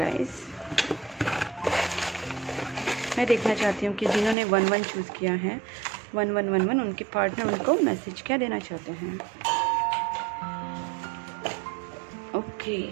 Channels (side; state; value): left; drops out; at 4.4 s